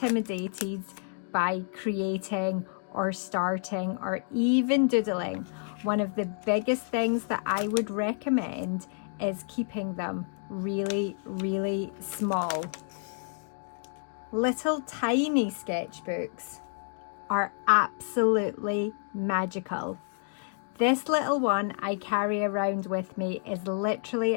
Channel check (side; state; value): right; silent; 58 dB below the other